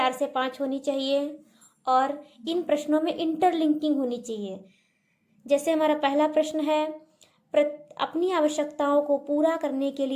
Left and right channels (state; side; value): identical; both; correlation 1.00